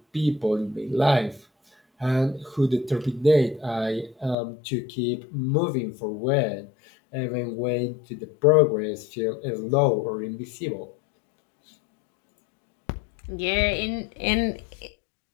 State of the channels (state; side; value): drops out; right; at 4.4 s